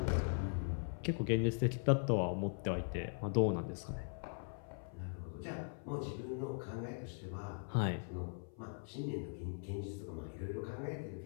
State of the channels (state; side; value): silent; right; 51 dB below the other